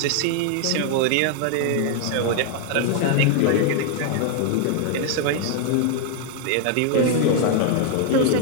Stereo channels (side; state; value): both; different; correlation 0.00